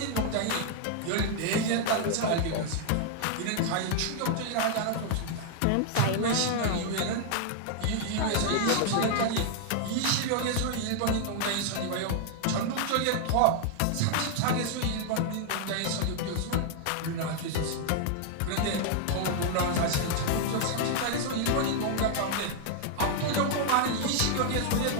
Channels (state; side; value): different; both; correlation 0.00